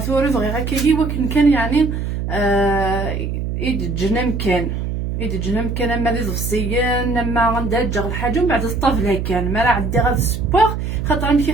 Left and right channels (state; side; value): noise; right; hum, 3 dB below the sound